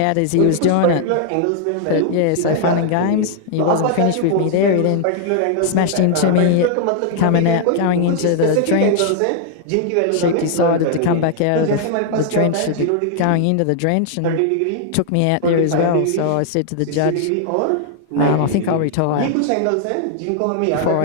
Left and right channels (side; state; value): both; different; correlation 0.00